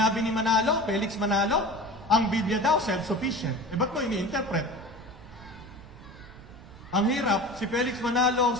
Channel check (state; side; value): noise; right; rumble, 18 dB below the sound